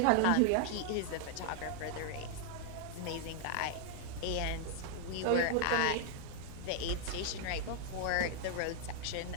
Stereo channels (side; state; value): both; different; correlation 0.00